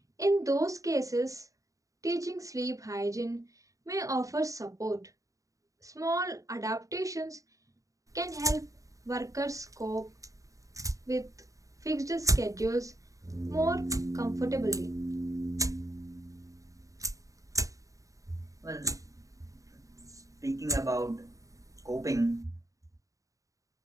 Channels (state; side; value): late; left; 0.16 ms